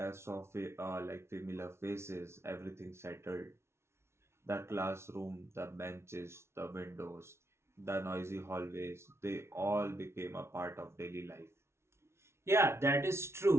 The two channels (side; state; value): left; late; 0.13 ms